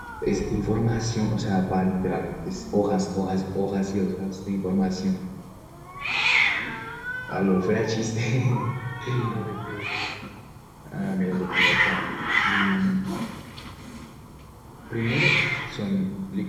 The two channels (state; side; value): identical; both; correlation 1.00